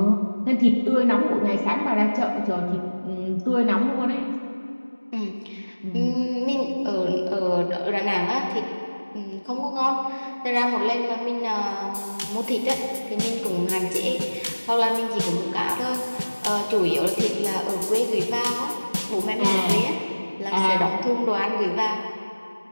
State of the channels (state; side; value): inverted; both; correlation -1.00